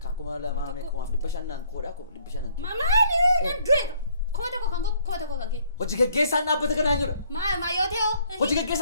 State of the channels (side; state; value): both; inverted; correlation -0.63